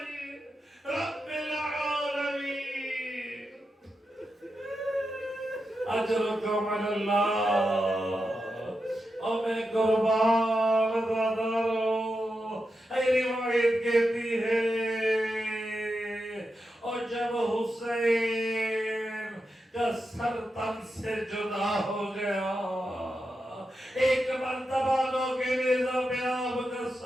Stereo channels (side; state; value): both; normal; correlation 0.88